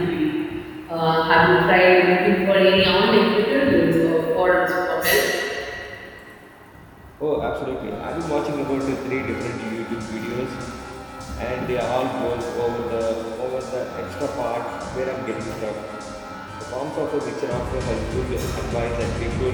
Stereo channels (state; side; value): identical; both; correlation 1.00